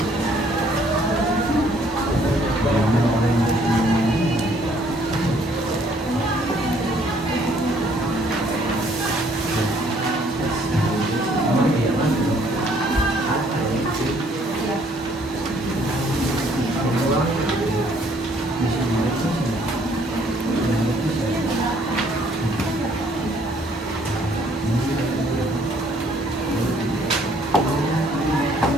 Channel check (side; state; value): both; normal; correlation 0.63